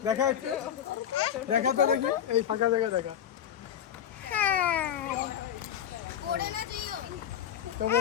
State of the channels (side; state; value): right; quieter; 9.7 dB